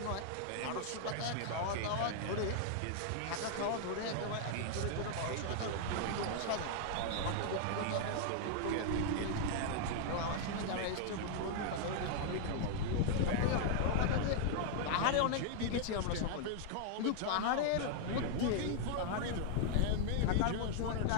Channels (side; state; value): both; different; correlation 0.00